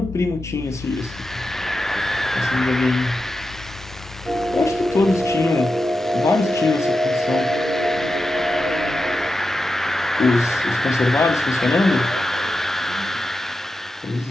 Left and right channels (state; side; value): normal; both; correlation 0.90